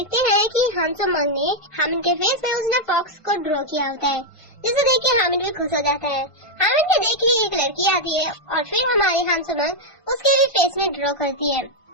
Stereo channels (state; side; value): late; right; 1.5 ms